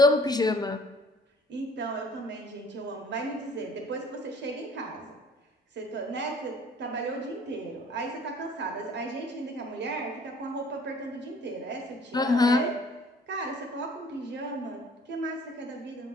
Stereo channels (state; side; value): normal; both; correlation 0.53